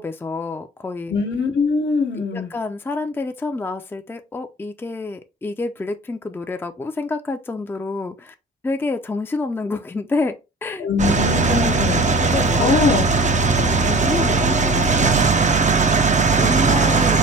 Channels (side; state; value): both; normal; correlation 0.40